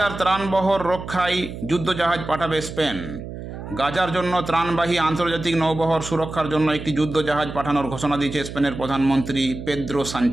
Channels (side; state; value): right; noise; hum, 10 dB below the sound